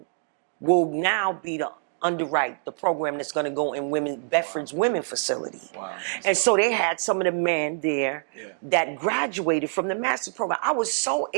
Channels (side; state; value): left; silent; digital silence